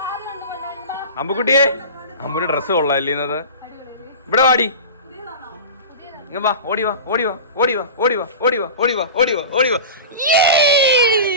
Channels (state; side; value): inverted; both; correlation -0.32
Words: അമ്പുക്കുട്ടിയെ, അമ്പുന്റെ ഡ്രസ്സ് കൊള്ളാല്ലേ ഇന്നത്? ഇവിടെ വാടി, ഇങ്ങ വാ, ഓടിവാ.